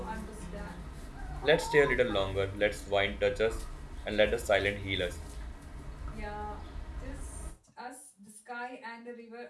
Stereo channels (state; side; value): identical; both; correlation 1.00